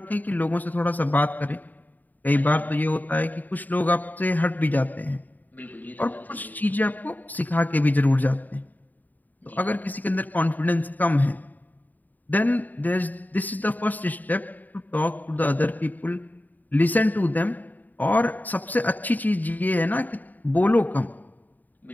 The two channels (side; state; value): right; late; 0.083 ms